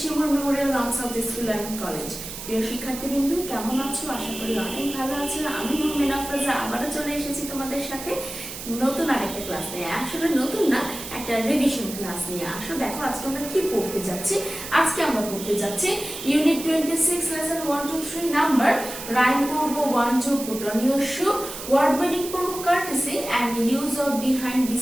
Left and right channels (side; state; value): right; noise; hiss, 10 dB below the sound